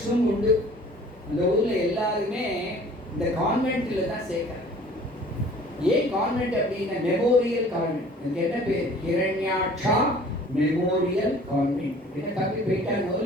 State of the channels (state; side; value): normal; both; correlation 0.50